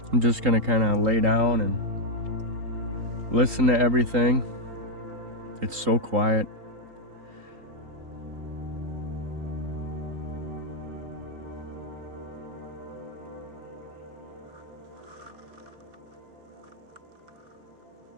I'm just gonna kind of lay down and listen to everything. It's so quiet.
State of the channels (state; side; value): late; left; 3.8 ms